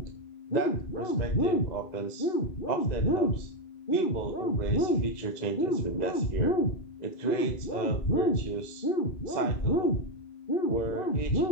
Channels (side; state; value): right; late; 2.0 ms